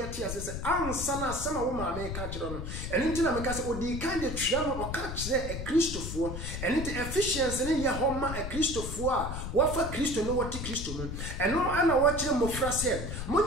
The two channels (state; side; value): noise; left; rumble, 6 dB below the sound